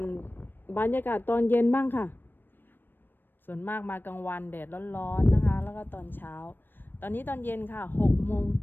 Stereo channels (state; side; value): late; right; 0.095 ms